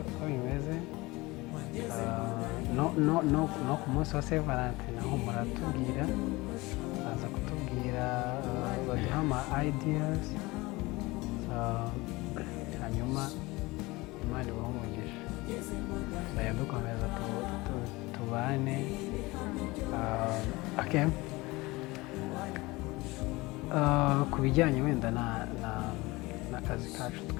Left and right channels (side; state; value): right; quieter; 22.0 dB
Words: uko bimeze, no ku munsi wa Saint Valentin naho muratubwira, baza kutubwira baduha ama ideas, hanyuma Imana ibahe umugisha, tuzajya dukomeza tubane. Okay, ku bijyanye wenda n'akazi kacu